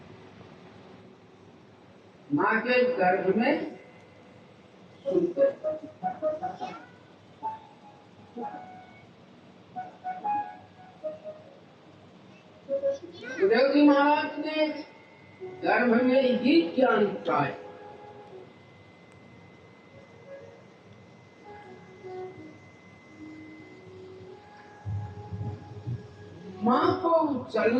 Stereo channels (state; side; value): identical; both; correlation 1.00